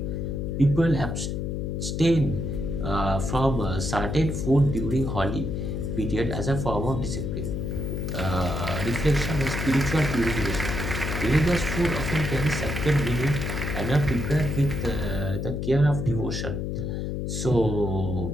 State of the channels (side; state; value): left; noise; hum, 3 dB below the sound